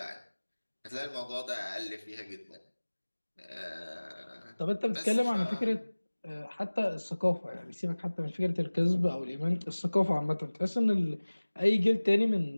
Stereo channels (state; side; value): inverted; both; correlation -1.00